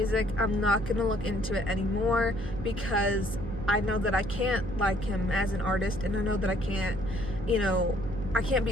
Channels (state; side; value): noise; right; hum, 9 dB below the sound